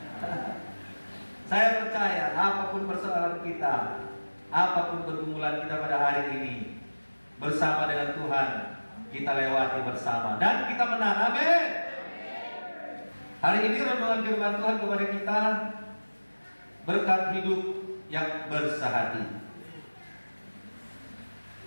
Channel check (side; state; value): both; inverted; correlation -1.00